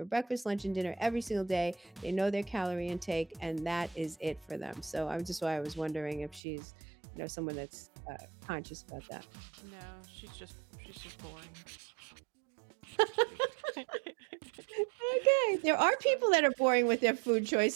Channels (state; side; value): drops out; left; at 6.4 s